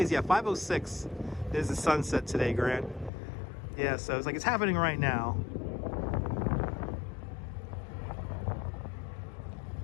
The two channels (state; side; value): drops out; right; at 3.1 s